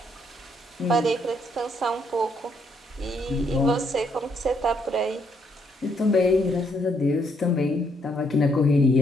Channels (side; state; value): both; normal; correlation 0.72